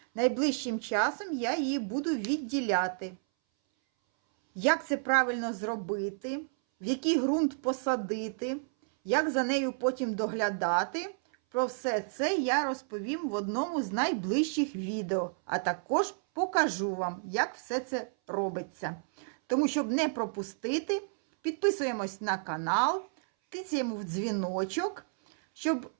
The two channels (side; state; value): left; silent; 57 dB below the other